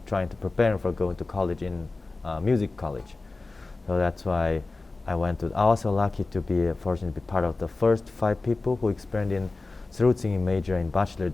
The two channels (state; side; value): quieter; right; 3.4 dB